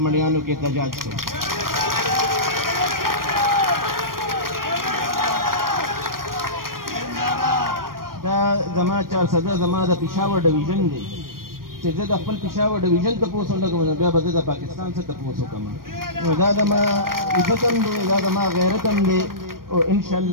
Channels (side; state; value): left; late; 0.91 ms